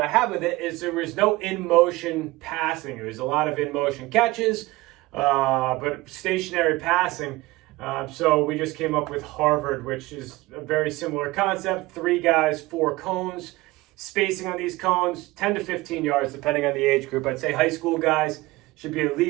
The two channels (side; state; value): left; quieter; 20.2 dB